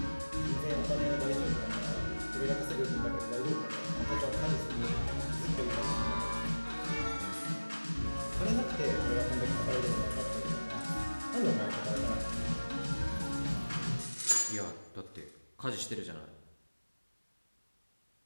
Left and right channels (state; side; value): inverted; both; correlation -1.00